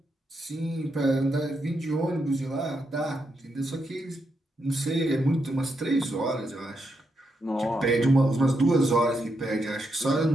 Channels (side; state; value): both; normal; correlation 0.82